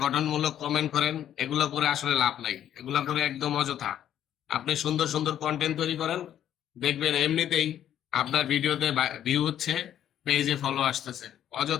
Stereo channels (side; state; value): right; quieter; 10.7 dB